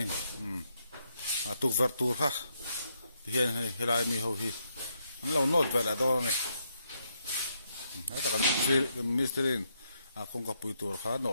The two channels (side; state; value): both; inverted; correlation -0.78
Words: tục vật tour ha thì hiện nay lại mi hầu hi lâu nốt về là đó này hết tất cả mistrin công cấp bự tổ cả nó